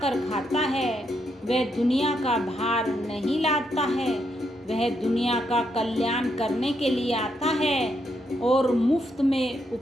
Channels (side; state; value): both; normal; correlation 0.79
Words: खाता है, वह दुनिया का भार नहीं लाता है, वह दुनिया का कल्याण करने के लिए आता है और मुफ्त में